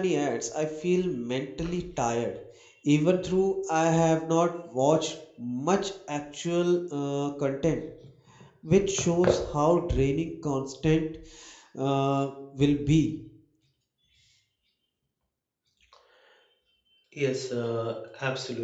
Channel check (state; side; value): identical; both; correlation 1.00